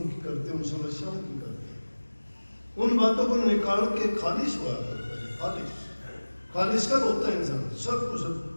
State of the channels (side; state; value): both; inverted; correlation -1.00